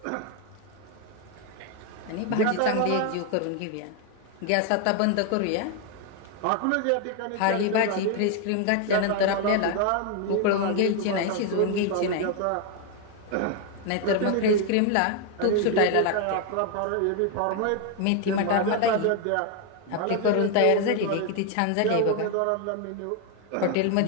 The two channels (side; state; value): both; different; correlation 0.01